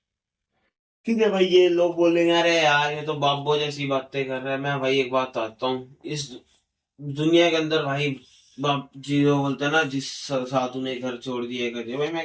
ठीक है भाई। ये लोग बोलेंगे अरे यार ये तो बाबो जैसी बातें कर रहा है। मैं भाई एक बात आता हूँ, इस दुनिया के अंदर भाई बाप जी जो बोलते हैं ना, जिस साधु ने घर छोड़ दिए, कर दिया भाई,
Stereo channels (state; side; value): identical; both; correlation 1.00